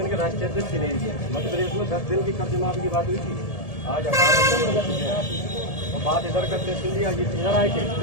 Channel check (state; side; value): late; right; 1.7 ms